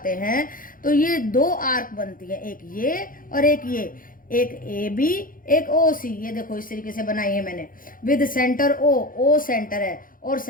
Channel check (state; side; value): late; right; 0.40 ms